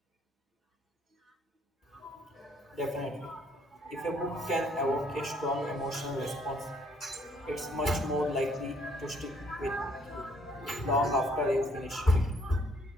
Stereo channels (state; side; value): normal; both; correlation 0.65